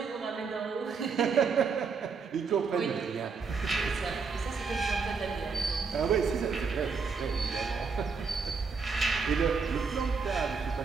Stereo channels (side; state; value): left; quieter; 5.1 dB